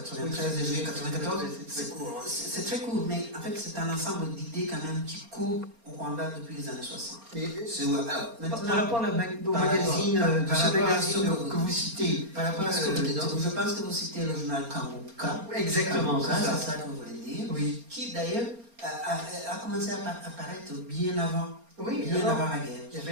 et juillet 94, c'est très court, mais en fait c'est un ensemble d'idées quand même qui court au Rwanda depuis les années 60. Alors, maintenant, par rapport au magazine, que vous citez, par rapport à ce que vous dites, je pense que vous citez le journal Kanguka. Exactement, c'est ça que vous voulez dire, oui. Qui d'ailleurs a commencé à apparaître bien avant. Oui, bien avant la guerre. Il y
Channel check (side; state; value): left; late; 4.3 ms